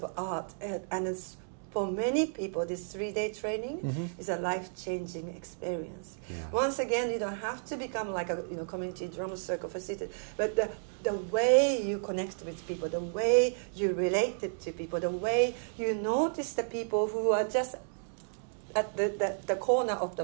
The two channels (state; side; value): silent; left; digital silence